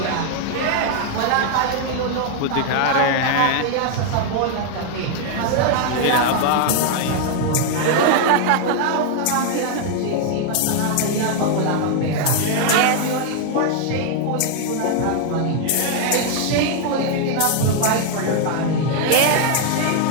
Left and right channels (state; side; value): different; both; correlation 0.00